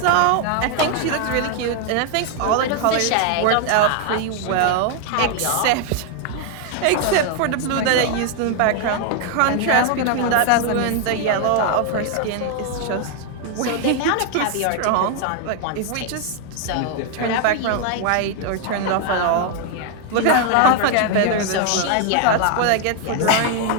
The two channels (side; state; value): both; different; correlation 0.00